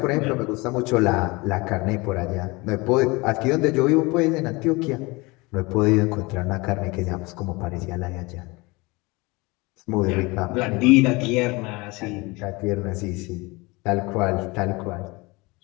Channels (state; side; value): quieter; right; 24.6 dB